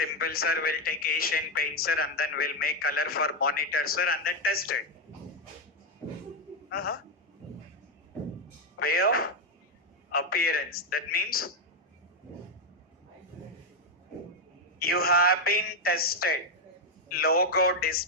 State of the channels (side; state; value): both; normal; correlation 0.04